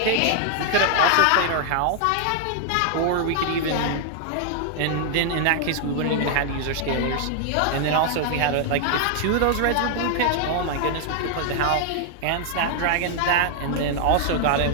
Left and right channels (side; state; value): both; different; correlation 0.00